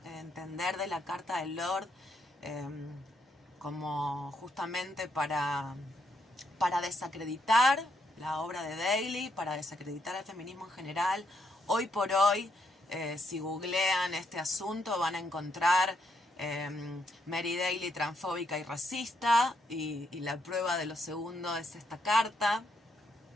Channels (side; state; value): both; normal; correlation 0.76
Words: entender de la carta de Lorde, como justamente para desacreditar la obra de Daly, para desacreditar el feminismo en general. Hoy por hoy, si googlean este asunto, van a encontrar Mary Daly transfóbica y racista, y la prueba de lo segundo es esta carta,